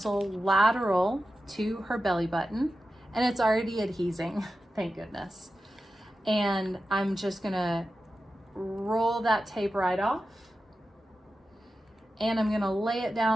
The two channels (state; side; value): normal; both; correlation 0.92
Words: lateral to her belly button, and it's already adhesing. thank goodness. And I'm just gonna roll that tape right off. And I'm gonna lay it